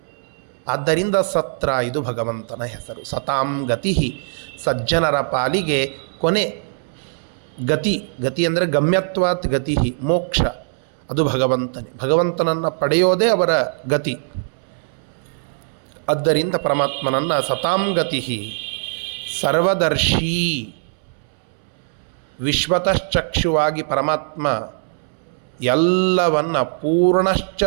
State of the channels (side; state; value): left; silent; 65 dB below the other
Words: ಆದ್ದರಿಂದ ಸತ್ರ ಇದು ಭಗವಂತನ ಹೆಸರು. ಸತಾಂ ಗತಿ, ಸಜ್ಜನರ ಪಾಲಿಗೆ ಕೊನೆ ಗತಿ ಅಂದರೆ ಗಮ್ಯತ್ವಾತ್ ಗತಿ, ಮೋಕ್ಷ, ಅದು ಭಗವಂತನನ್ನು ಪಡೆಯೋದೇ ಅವರ ಗತಿ. ಆದ್ದರಿಂದ ಪರಮಾತ್ಮನನ್ನು ಸತಾಂಗತಿ ಸರ್ವದರ್ಶಿ ವಿಶ್ವತಶ್ಚಕ್ಷುವಾಗಿ ಪರಮಾತ್ಮ ಎಲ್ಲವನ್ನ ಪೂರ್ಣಶ್ಚ